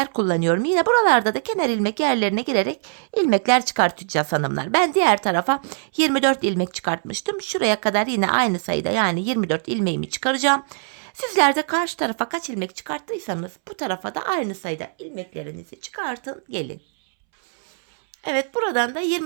kullanıyorum. Yine buralarda da kenar ilmek yerlerine girerek ilmekler çıkartacağız hanımlar. Ben diğer tarafa 24 ilmek çıkartmıştım. Şuraya kadar yine aynı sayıda yani 24 ilmeğimi çıkaracağım. Sizler de karşı tarafa kaç ilmek çıkarttıysanız bu tarafa da aynı sayıda ilmeklerinizi çıkartın gelin. Evet, buradan da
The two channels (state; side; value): silent; left; 64 dB below the other